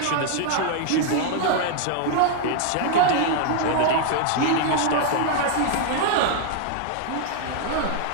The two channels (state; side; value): different; both; correlation 0.00